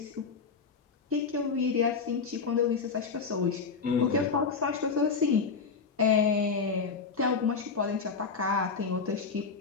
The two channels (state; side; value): quieter; right; 5.2 dB